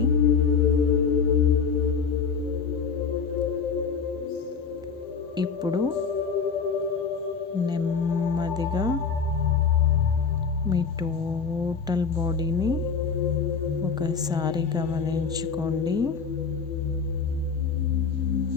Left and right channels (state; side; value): quieter; right; 5.7 dB